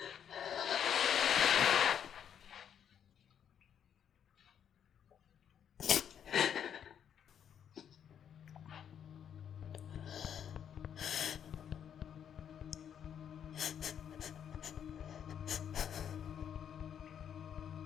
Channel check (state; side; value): quieter; right; 8.7 dB